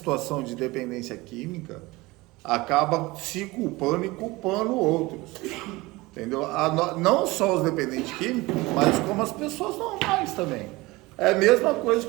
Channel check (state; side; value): quieter; left; 21.4 dB